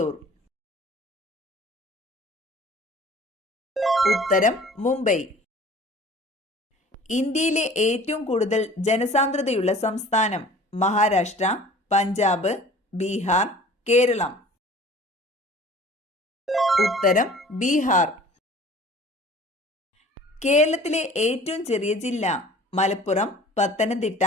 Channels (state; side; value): normal; both; correlation 0.47